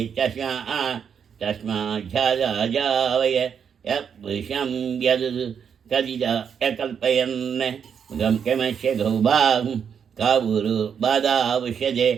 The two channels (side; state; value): left; quieter; 7.4 dB